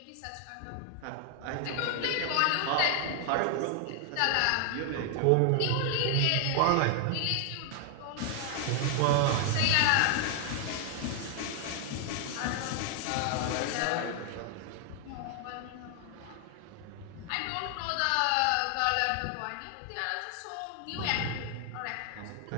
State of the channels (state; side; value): different; both; correlation 0.00